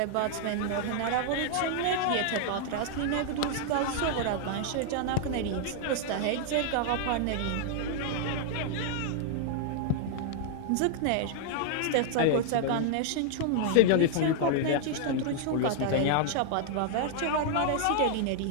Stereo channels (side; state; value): both; different; correlation 0.00